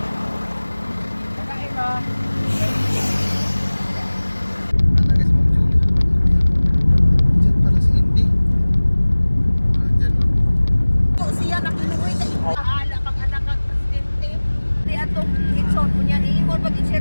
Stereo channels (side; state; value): both; inverted; correlation -1.00